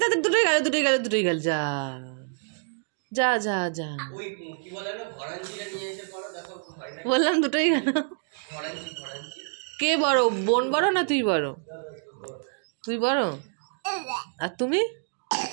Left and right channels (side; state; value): left; silent; 60 dB below the other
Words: তাড়াতাড়ি, দুটোই গেল। যা যা যা যা, ওই কি বলে না, ভরাঞ্চিটা নিয়ে এসে পড়ো, দেখো হয় না। বললাম দুটোই গেল। ভরাঞ্চি। কে বড়, বোন বড় না তুই বড়? তুই বড়। আর তুমি?